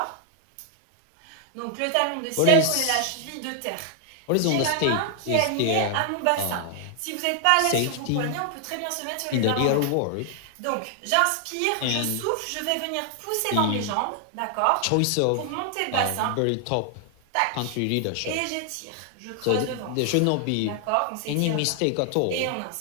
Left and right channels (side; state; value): both; different; correlation 0.00